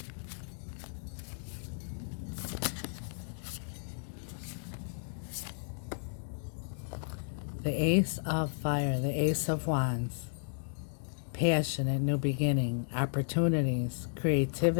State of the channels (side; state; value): right; silent; digital silence